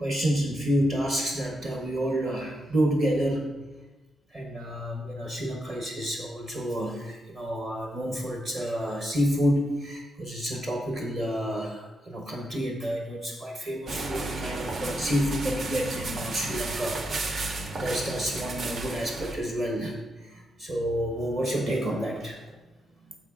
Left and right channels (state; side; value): normal; both; correlation 0.83